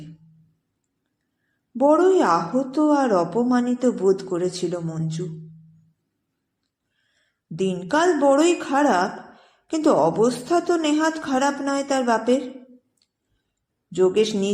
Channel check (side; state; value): both; identical; correlation 1.00